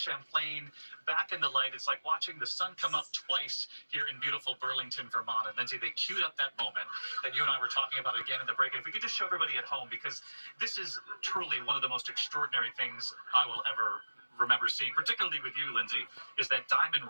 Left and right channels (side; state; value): both; inverted; correlation -1.00